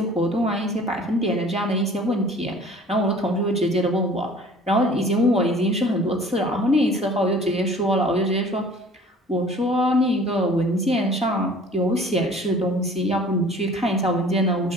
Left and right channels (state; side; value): normal; both; correlation 0.49